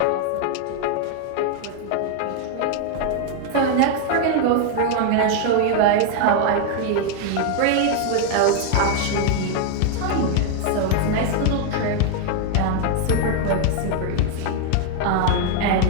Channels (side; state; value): both; different; correlation 0.00